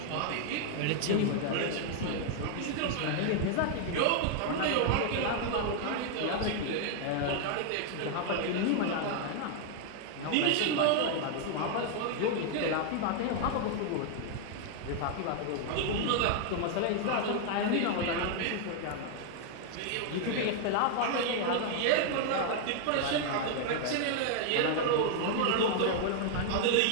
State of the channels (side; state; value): both; different; correlation 0.00